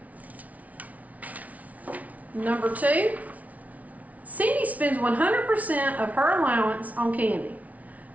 Number 2. Cindy spends 100% of her allowance on candy.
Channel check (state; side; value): late; left; 0.070 ms